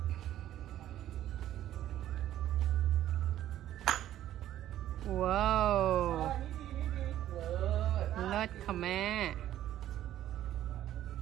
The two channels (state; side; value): quieter; left; 12.5 dB